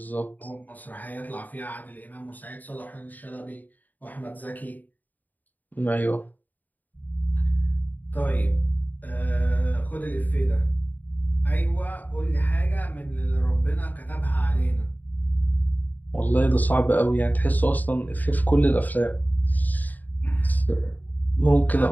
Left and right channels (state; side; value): late; right; 0.083 ms